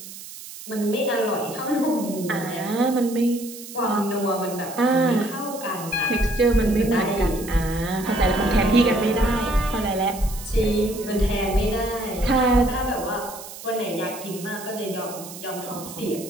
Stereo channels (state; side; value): noise; right; hiss, 14 dB below the sound